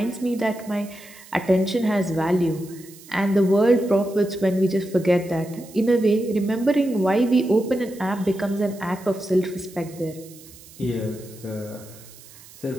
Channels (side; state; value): right; noise; hiss, 21 dB below the sound